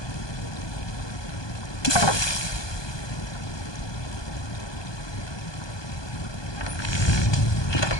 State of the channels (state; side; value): late; right; 1.2 ms